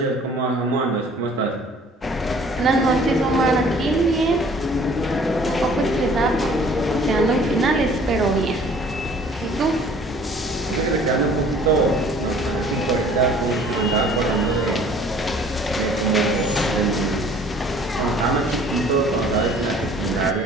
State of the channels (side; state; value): both; normal; correlation 0.53